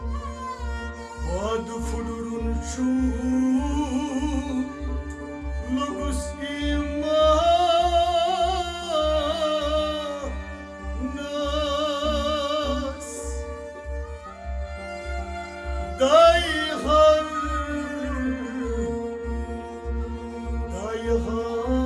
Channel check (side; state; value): both; identical; correlation 1.00